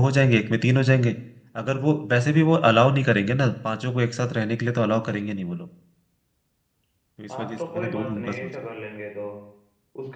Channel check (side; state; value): both; identical; correlation 1.00